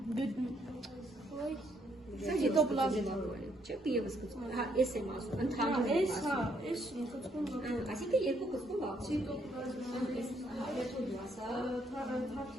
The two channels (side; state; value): both; normal; correlation 0.72